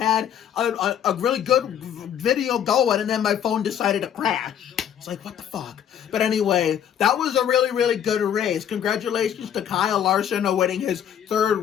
a really good video going and then my phone decided to crash. It's like, what the fuck? But anyway, that was a really, really good race. Congratulations to Kyle Larson on winning his third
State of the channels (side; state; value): right; quieter; 9.4 dB